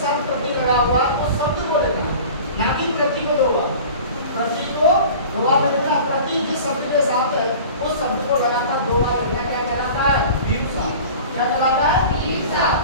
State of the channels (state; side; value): inverted; both; correlation -0.40